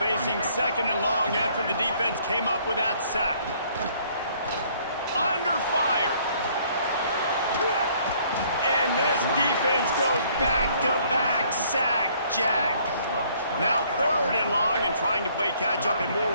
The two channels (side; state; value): both; inverted; correlation -0.62